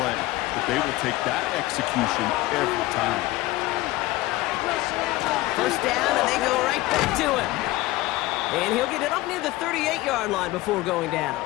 But they will take that execution every time. 1st down, and they go right back to him. And he'll get it up near the 38-yard line before going down.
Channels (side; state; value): right; quieter; 18.5 dB